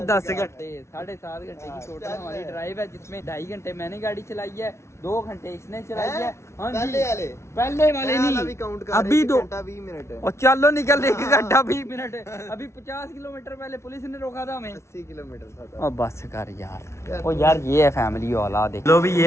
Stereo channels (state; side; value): late; right; 0.13 ms